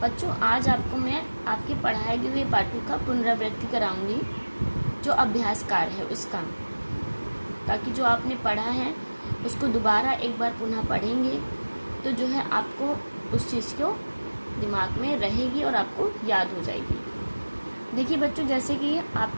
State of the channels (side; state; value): both; inverted; correlation -1.00